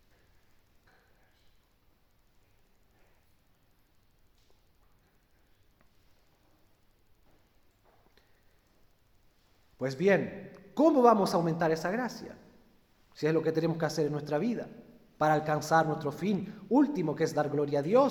Pues bien, ¿cómo vamos a aumentar esa gracia? Si es lo que tenemos que hacer en nuestra vida, para alcanzar nuestro fin último, que es dar gloria a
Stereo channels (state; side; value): identical; both; correlation 1.00